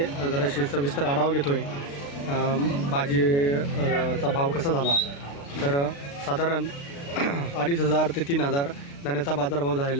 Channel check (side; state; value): right; late; 36 ms